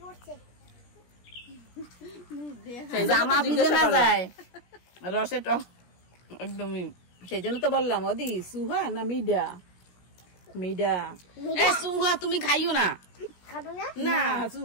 জামা ভিজে না যায় রসে টক একদমই। সেই জন্য তো বললাম ওদি সুহা না মিডা? মিডা। এ সুহা তুমি খাইও না। খাবো না? না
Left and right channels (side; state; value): right; late; 17 ms